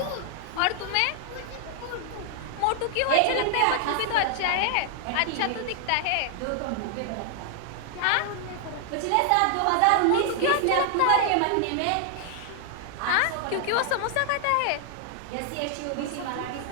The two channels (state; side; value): different; both; correlation 0.00